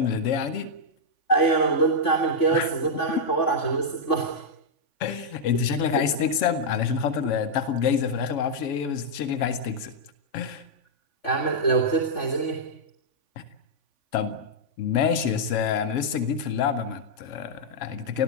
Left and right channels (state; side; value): late; right; 3.5 ms